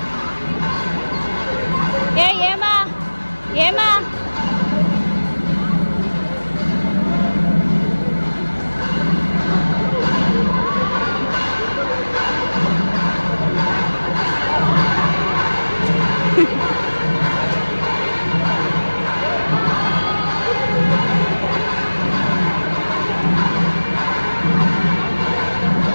ಏ ಏಮಾ ಏಮಾ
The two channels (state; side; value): inverted; both; correlation -1.00